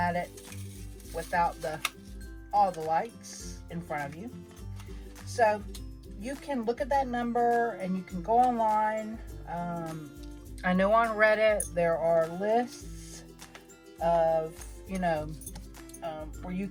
it without all the lights in front of you. So you can look at that number and you can go online. I know on Reddit there are lists of, you know, where you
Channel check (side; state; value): both; identical; correlation 1.00